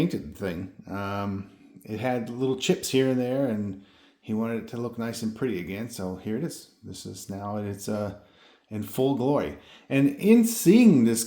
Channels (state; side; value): identical; both; correlation 1.00